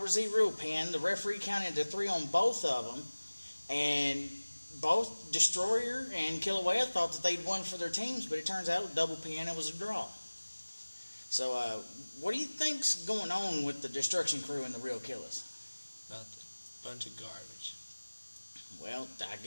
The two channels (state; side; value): inverted; both; correlation -1.00